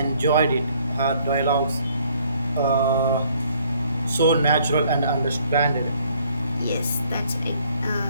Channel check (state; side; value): inverted; both; correlation -0.63